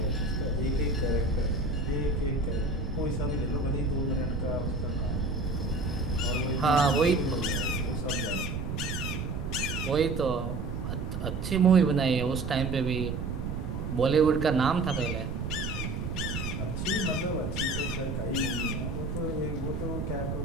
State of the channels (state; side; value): noise; right; rumble, 4 dB below the sound